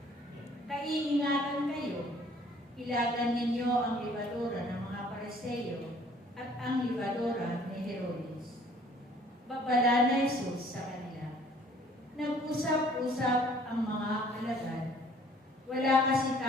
Kaiingatan kayo, ilagan ninyo ang libadura ng mga Pariseo at ang libadura ni Herodes. Babala na Jesus sa kanila. Nag-usap-usap ang mga alagad. Wala kasi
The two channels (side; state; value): both; normal; correlation 0.57